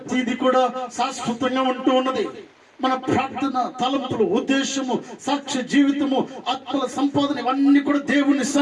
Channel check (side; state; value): both; identical; correlation 1.00